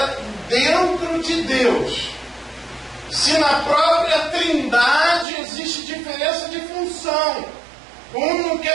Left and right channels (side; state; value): left; drops out; at 5.2 s